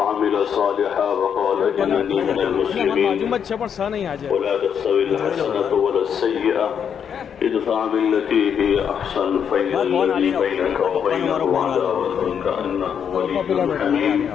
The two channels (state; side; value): quieter; right; 7.8 dB